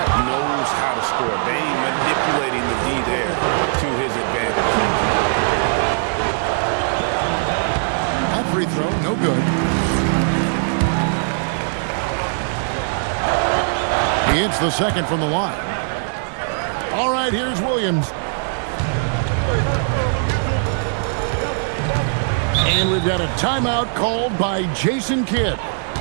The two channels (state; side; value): silent; left; digital silence